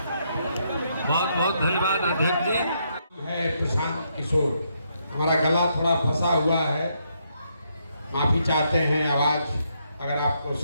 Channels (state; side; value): inverted; both; correlation -0.76